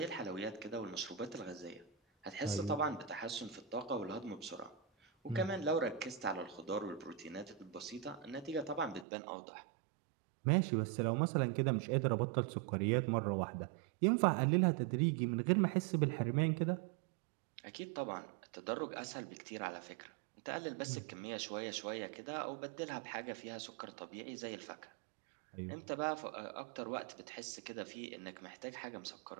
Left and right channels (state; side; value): drops out; left; at 9.1 s